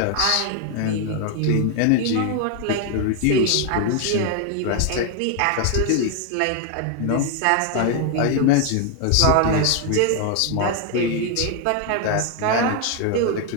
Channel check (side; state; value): both; different; correlation 0.01